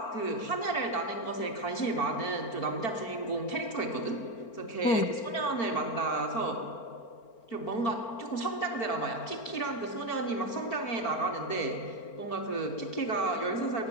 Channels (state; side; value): late; right; 4.4 ms